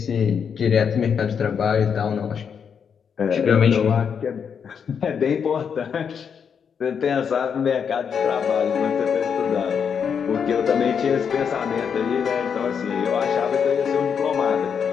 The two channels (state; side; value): quieter; right; 7.0 dB